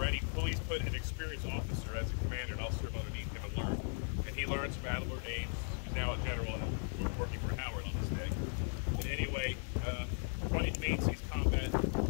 Please put an experienced officer as a commander, and I'll serve underneath him and learn. And he learns from Adelbert Ames, who's now a general and working for Howard on this day. And anyway, 20th Maine sees combat,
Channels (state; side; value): silent; right; 53 dB below the other